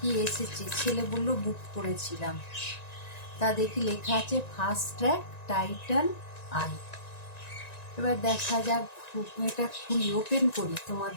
এসেছে। ছেলে বললো বুক করেছিলাম, তা দেখি লেখা আছে ফাস্ট ট্র্যাক টাইটান আই। এবার দেখা যাক, এটা খুলি, ওপেন করি,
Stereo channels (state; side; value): late; right; 1.9 ms